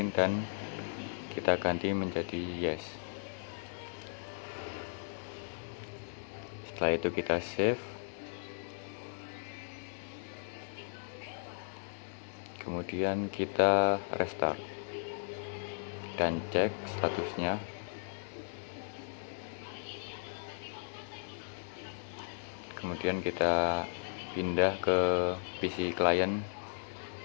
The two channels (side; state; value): right; silent; digital silence